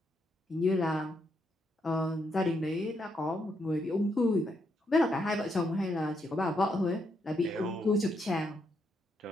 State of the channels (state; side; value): normal; both; correlation 0.78